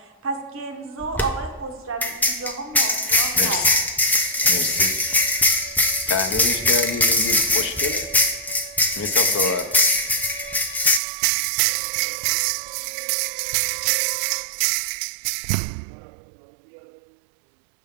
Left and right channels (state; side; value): drops out; left; at 11.0 s